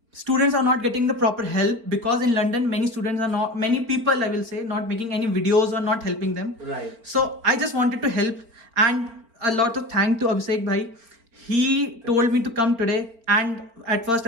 students are not getting the proper help, because in London many people, I will say, not making any videos or not helping them. Right. So I just wanted to help, and a lot of thanks to Abhishek bhai. He told me to come today, and at first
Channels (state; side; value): late; left; 4.4 ms